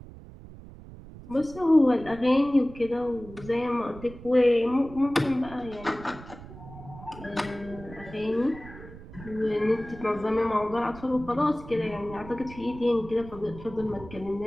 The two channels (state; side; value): noise; right; rumble, 16 dB below the sound